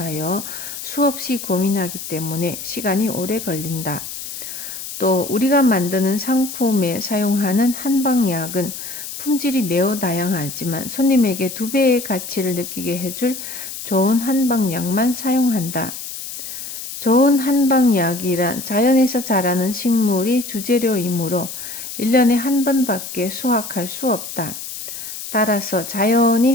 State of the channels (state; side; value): noise; left; hiss, 9 dB below the sound